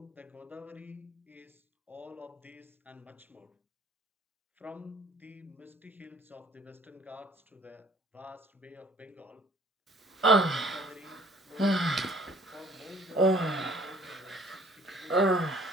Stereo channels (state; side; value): normal; both; correlation 0.55